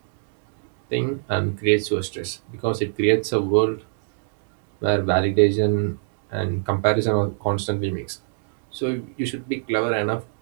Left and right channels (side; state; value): left; silent; digital silence